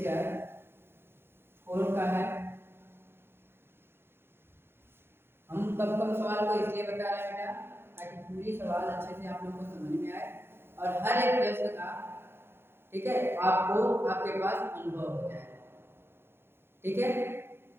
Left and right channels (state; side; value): late; left; 0.11 ms